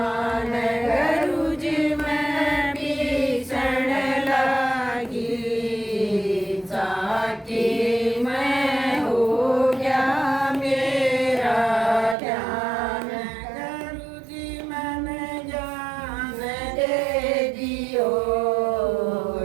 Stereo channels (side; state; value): left; drops out; at 12.2 s